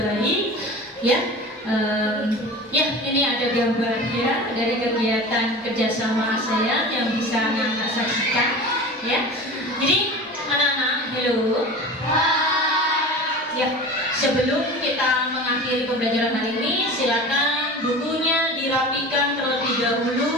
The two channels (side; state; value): both; normal; correlation 0.35